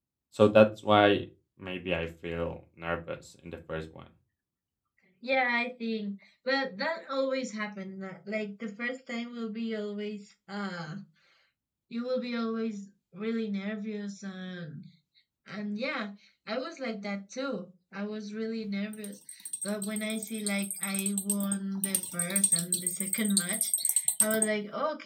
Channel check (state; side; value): identical; both; correlation 1.00